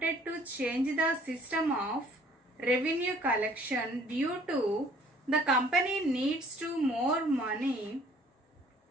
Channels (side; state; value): both; normal; correlation 0.57